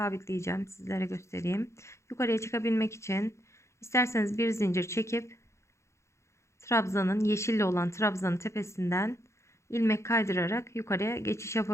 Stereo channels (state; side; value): late; right; 0.14 ms